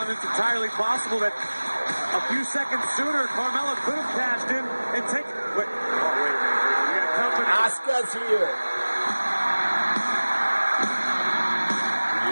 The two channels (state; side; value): inverted; both; correlation -1.00